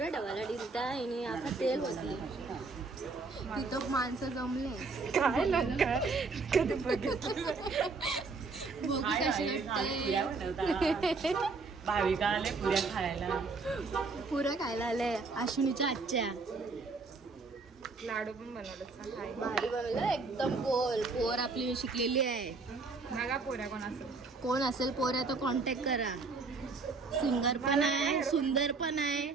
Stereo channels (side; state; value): left; quieter; 4.1 dB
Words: डबाला डिलता आणि आता तेल होती. तिथं माणसं जमले. काय कधी बघितलं. बघू कशी वाटते. भाविका आले पुऱ्या खायला. पुरं खायला आले अश्विनीच्या आजच्या. लाडू पण बनवलं. भारी बनवलं एकदम. गोल पोर आपली शिकलेली आहे. बघा पोऱ्या कोण असेल. कोण असेल पोऱ्या तर कॉन्टॅक्ट करा. सिंगर पण आहे, सुंदर पण आहे,